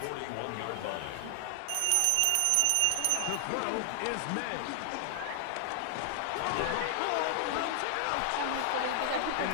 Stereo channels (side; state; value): both; different; correlation 0.00